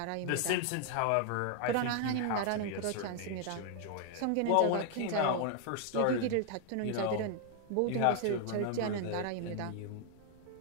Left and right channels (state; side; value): different; both; correlation 0.00